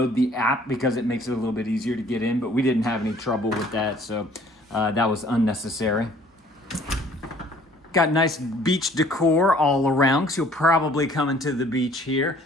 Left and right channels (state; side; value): normal; both; correlation 0.56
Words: the app because it makes it a little bit easier to get in, but we didn't have any trouble with that, so that was unnecessary. Got nice beach decor all around, because you'll probably come into the beach here,